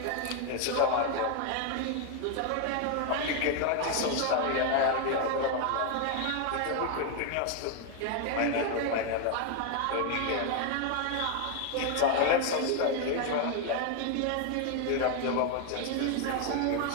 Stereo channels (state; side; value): different; both; correlation 0.01